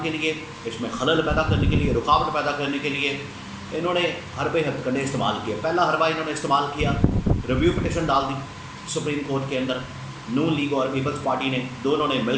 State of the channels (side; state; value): both; identical; correlation 1.00